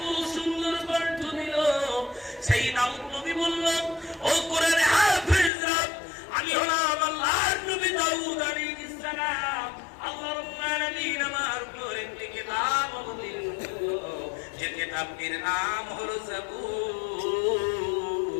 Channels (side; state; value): right; drops out; at 5.5 s